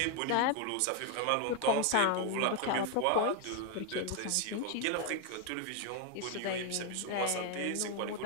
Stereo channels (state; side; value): different; both; correlation 0.01